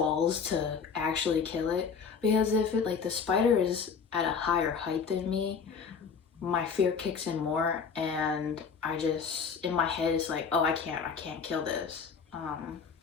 to actually kill it, because if it like the spider is at a higher height than me, my fear kicks in more, and I just in my head it's like, oh, I can't kill this.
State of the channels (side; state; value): right; quieter; 6.0 dB